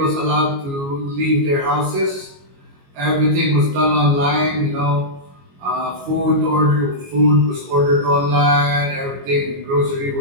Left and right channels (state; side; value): late; left; 22 ms